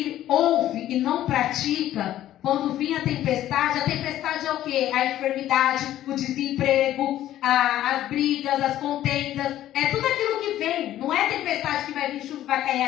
ouve e não pratica, quando vir a tempestade é o quê? A enfermidade, o desemprego, as brigas, as contendas. É tudo aquilo que vem. Não é tempestade que vai vir, chuva, vai cair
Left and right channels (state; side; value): quieter; right; 13.0 dB